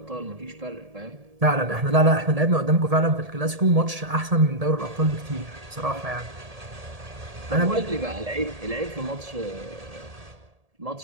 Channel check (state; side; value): late; left; 1.8 ms